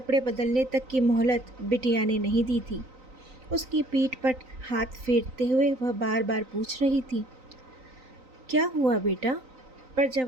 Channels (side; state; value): left; late; 3.9 ms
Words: बदलने तक की मोहलत बिटिया ने नहीं दी थी। उसकी पीठ पर हाथ फेरते हुए वह बार बार पूछ रही थी, क्या हुआ बेटा? पर